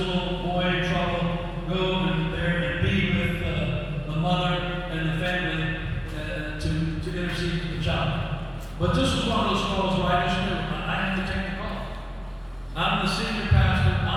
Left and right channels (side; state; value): both; identical; correlation 1.00